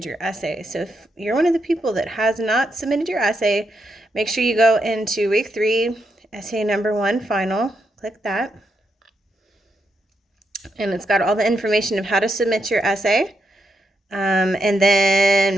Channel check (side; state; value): both; normal; correlation 0.82